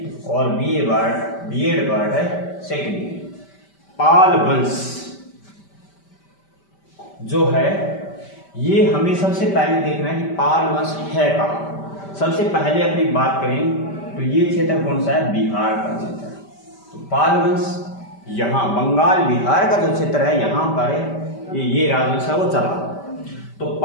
और बीएड पार्ट है सेकंड में। पाल वंश जो है ये हमें सबसे पहले देखना है कि पाल वंश है कहाँ। सबसे पहले अपनी बात करें तो ये क्षेत्र कौन सा है, बिहार का क्षेत्र। तो पाल वंश यहाँ बंगाल बिहार का जो क्षेत्र है यहाँ पर ये राजवंश है वो चला। तो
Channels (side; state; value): right; late; 5.1 ms